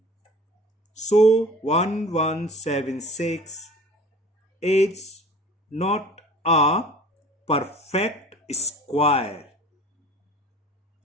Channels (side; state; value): both; normal; correlation 0.44